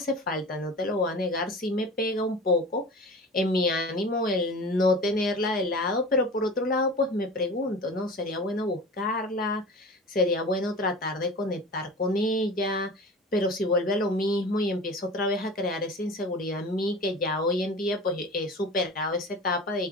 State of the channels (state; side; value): normal; both; correlation 0.36